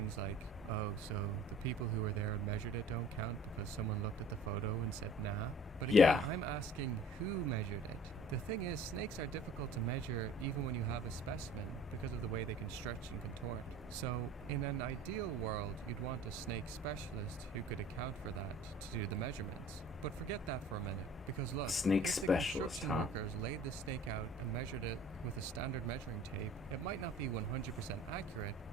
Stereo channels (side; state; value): both; normal; correlation 0.48